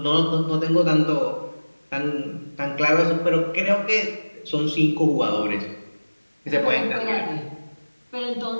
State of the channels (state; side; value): inverted; both; correlation -1.00